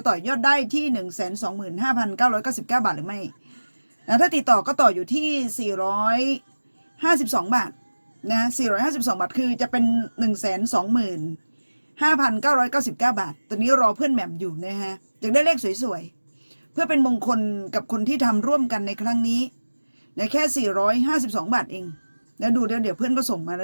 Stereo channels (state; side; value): inverted; both; correlation -1.00